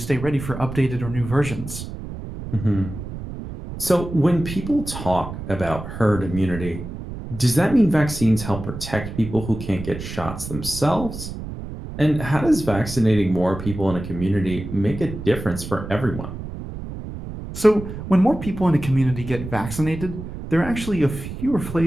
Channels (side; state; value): right; noise; rumble, 9 dB below the sound